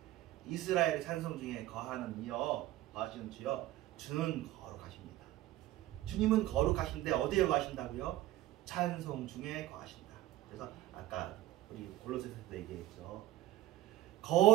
이스라엘의 찬송 중에 거하는 이여 거하시는 주여 주는 거룩하십니다. 주님은 거룩하신데 어디에 거하신다고요? 찬송 중에 거하신다. 그래서 아까 우리 골로새서도 얘기했죠.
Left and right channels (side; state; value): left; quieter; 15.4 dB